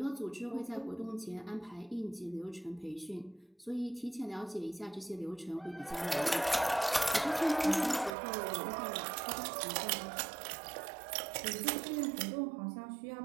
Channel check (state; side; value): drops out; left; at 8.2 s